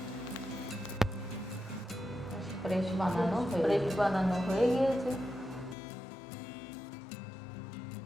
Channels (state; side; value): drops out; right; at 5.8 s